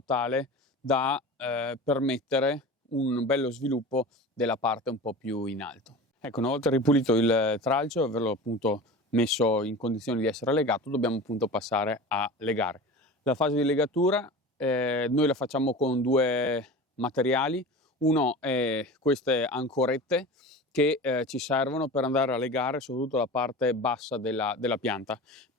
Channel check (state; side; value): normal; both; correlation 0.33